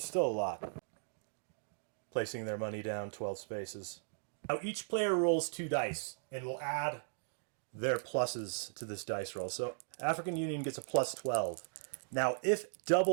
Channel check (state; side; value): silent; left; digital silence